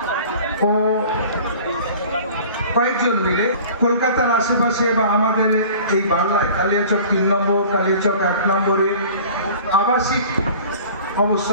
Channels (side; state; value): both; inverted; correlation -0.44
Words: ও কয়েকজন মিলে কলকাতার আশেপাশে বা আমাদের এই বাংলায় কালিয়াচক 3 নম্বর, কালিয়াচক 1 নম্বরে আবাসিক